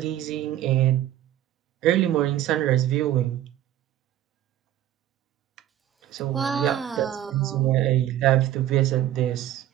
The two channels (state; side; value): quieter; left; 12.4 dB